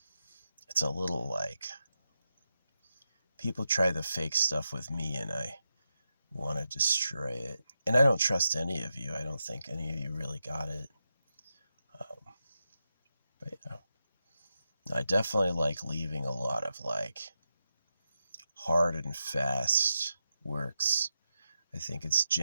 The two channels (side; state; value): both; inverted; correlation -0.88